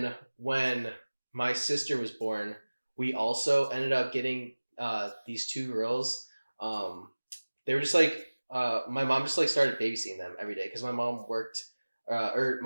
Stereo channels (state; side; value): inverted; both; correlation -1.00